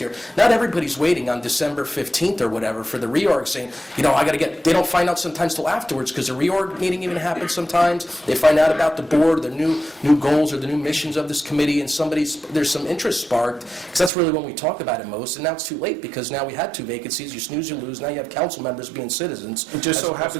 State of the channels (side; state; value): left; drops out; at 14.1 s